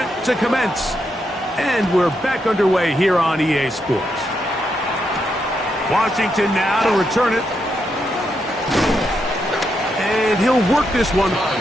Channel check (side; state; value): both; normal; correlation 0.81